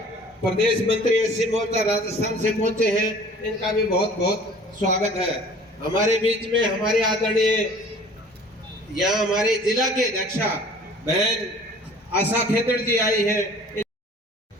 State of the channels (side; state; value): both; normal; correlation 0.49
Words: प्रदेश मंत्री एससी मोर्चा राजस्थान से पहुंचे हैं, इनका भी बहुत बहुत स्वागत है। हमारे बीच में हमारे आदरणीय यहाँ हमारे जिला के अध्यक्षा बहन आशा खेदड़ जी आई है।